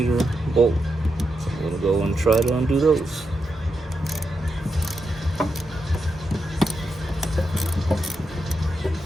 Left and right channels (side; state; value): both; normal; correlation 0.85